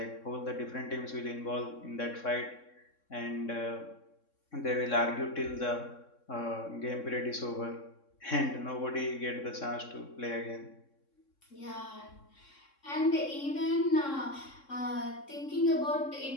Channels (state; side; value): late; right; 3.6 ms